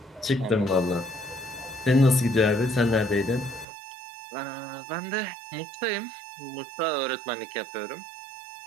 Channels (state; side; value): drops out; left; at 3.7 s